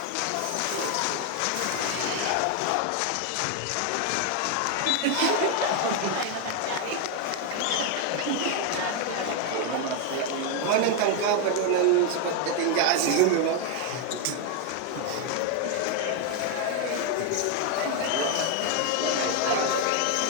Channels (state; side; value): different; both; correlation 0.01